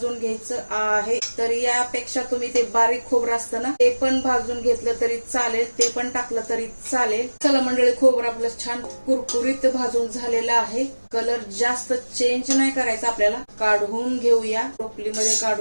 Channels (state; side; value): inverted; both; correlation -1.00